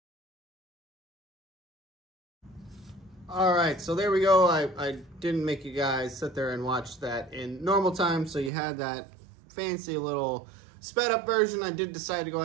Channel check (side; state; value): left; drops out; at 8.5 s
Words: All right, so there we go. I didn't make you guys sit there and watch that in normal time, so you had that fancy little sped up version. I did decide to go